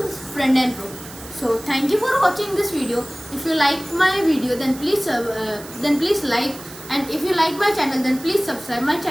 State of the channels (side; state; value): right; noise; hiss, 16 dB below the sound